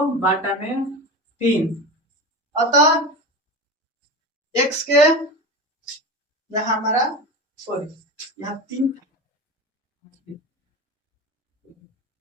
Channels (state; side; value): normal; both; correlation 0.26